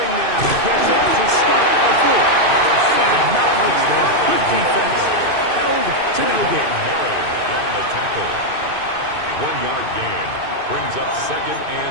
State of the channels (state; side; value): late; left; 2.5 ms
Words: now gets it to start the 4th. And not much there. Good defense. Held to no gain. Murray on the tackle. 1-yard gain. Brings up 2nd